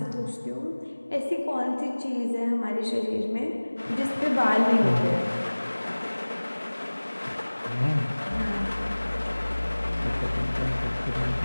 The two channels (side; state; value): both; inverted; correlation -1.00